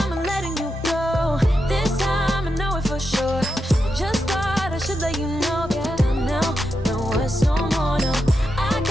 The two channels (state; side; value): normal; both; correlation 0.86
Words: I'm letting you go. This time I know it for sure. I just thought I should let you know. Yeah, now, no words no more, no. I